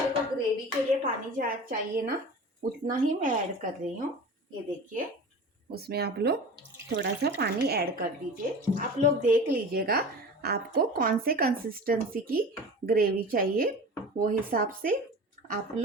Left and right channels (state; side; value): normal; both; correlation 0.35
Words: को ग्रेवी के लिए पानी चाहिए ना, उतना ही मैं ऐड कर रही हूँ। ये देखिए, उसमें आप लोग थोड़ा सा पानी ऐड कर दीजिए। आप लोग देख लीजिएगा आपको कौन से कंसिस्टेंसी की ग्रेवी चाहिए, वो हिसाब से आप